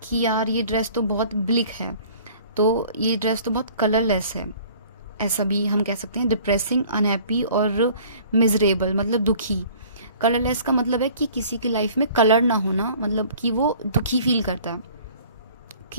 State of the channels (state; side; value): inverted; both; correlation -0.51